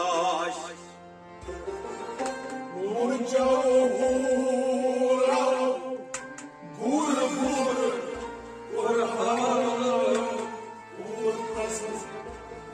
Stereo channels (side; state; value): both; identical; correlation 1.00